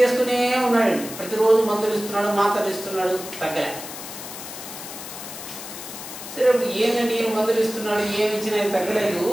ఉన్నాడండి, ప్రతిరోజు మందులు ఇస్తున్నాడు, మాత్రలు ఇస్తున్నాడు, తగ్గలే. సరే, ఇప్పుడు ఏంటండి ఈయన మందులు ఇస్తున్నాడు, ఏమి ఇచ్చినా తగ్గలేదు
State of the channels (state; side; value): noise; left; hiss, 11 dB below the sound